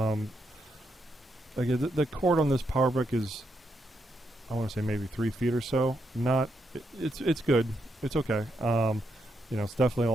Again, the cord on this power brick is, I want to say maybe 3 feet or so. It's good. It's okay. You know, it's definitely a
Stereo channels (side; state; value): both; normal; correlation 0.80